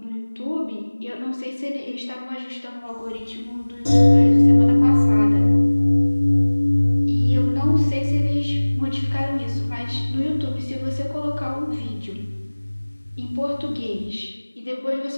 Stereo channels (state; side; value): inverted; both; correlation -1.00